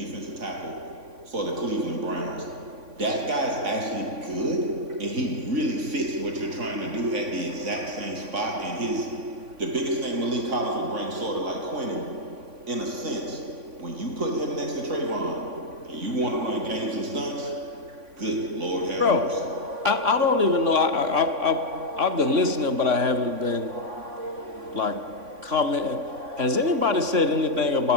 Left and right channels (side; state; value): left; late; 3.5 ms